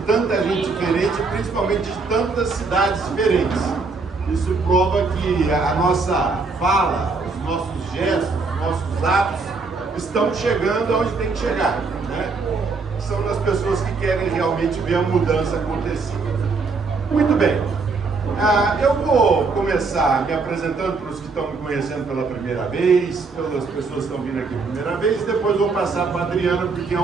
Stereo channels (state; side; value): quieter; left; 4.3 dB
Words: tanta gente diferente, principalmente de tantas cidades diferentes. Isso prova que a nossa fala, os nossos gestos, os nossos atos estão chegando aonde tem que chegar, né? São das pessoas que querem realmente ver a mudança acontecer. Muito bem. Eu vou começar me apresentando para os que estão me conhecendo pela primeira vez, pelas pessoas que estão vindo aqui pela primeira vez, e depois vou passar para a Adriana, porque é